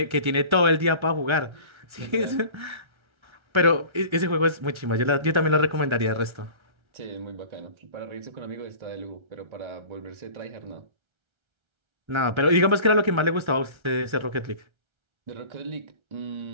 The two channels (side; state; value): left; late; 1.3 ms